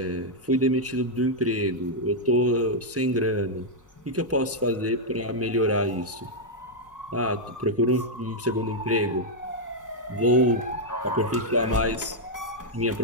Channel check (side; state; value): both; normal; correlation -0.03